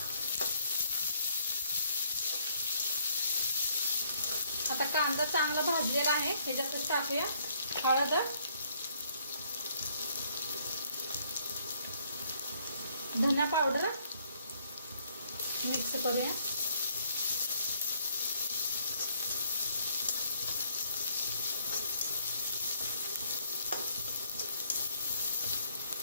आता कांदा चांगला भाजलेला आहे, ह्याच्यातच टाकूया हळद, धना पावडर, मिक्स करूया।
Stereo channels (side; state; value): both; inverted; correlation -0.66